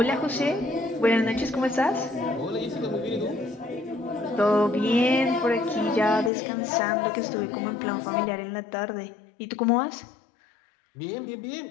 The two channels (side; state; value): right; drops out; at 6.3 s